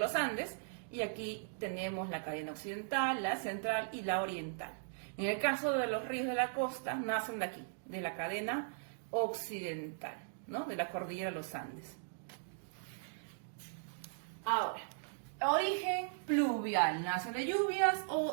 de los Andes, y aquí tenemos la cadena occidental, la central y la oriental. En el caso de los ríos de la costa, nacen de aquí, de la cadena occidental, ¿no? De la cordillera de los Andes. Ahora, origen pluvial, nacen de lluvias,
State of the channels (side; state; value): left; silent; digital silence